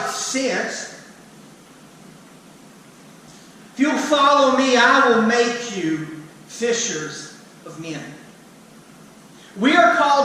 sense. If you'll follow me, I will make you fishers of men. We are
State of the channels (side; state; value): both; identical; correlation 1.00